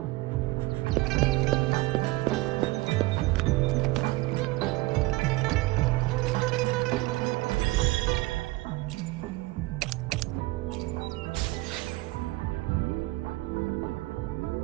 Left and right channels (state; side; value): quieter; left; 20.6 dB